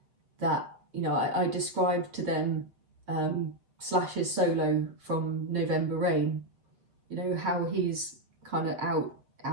that, you know, I described to them Slash's solo from November Rain, you know, how he's kind of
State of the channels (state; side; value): late; left; 7.6 ms